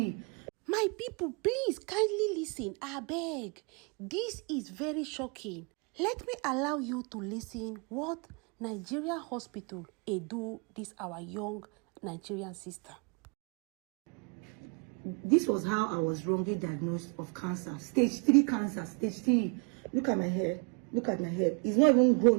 My people, please kindly listen. I beg. This is very shocking. Let me allow you to listen what Nigerian hospital do this our young Nigerian sister. This was how I was wrongly diagnosed of cancer. Stage 3 cancer, stage 3. Look at my hair. Look at my hair. It's not even grown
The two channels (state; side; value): quieter; left; 35.3 dB